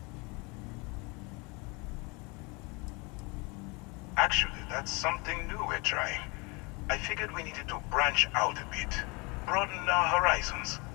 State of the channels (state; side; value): quieter; right; 28.5 dB